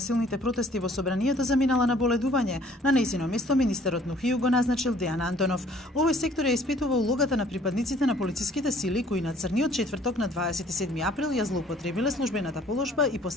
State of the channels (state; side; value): normal; both; correlation 0.57